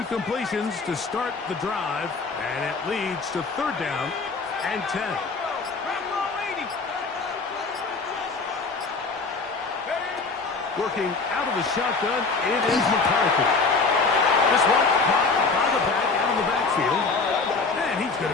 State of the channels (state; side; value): quieter; right; 4.2 dB